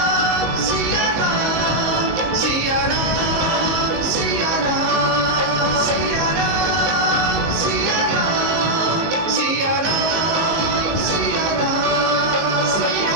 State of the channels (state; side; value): late; left; 19 ms